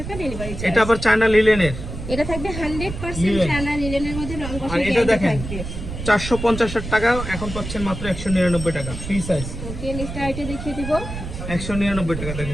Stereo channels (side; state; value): right; noise; rumble, 8 dB below the sound